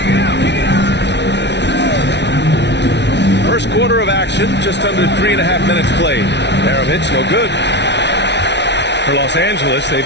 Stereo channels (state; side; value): late; right; 0.50 ms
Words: First quarter of action, just under 3.5 minutes played. Maravich, no good. For Los Angeles,